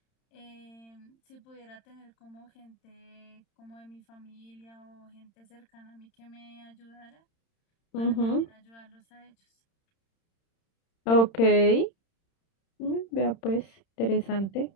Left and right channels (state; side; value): late; right; 31 ms